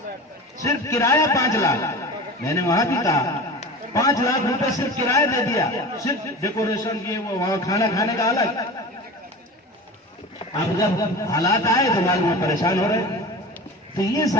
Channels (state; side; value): normal; both; correlation 0.33